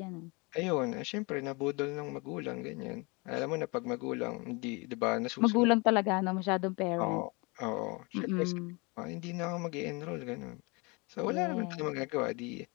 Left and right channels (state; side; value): quieter; right; 28.2 dB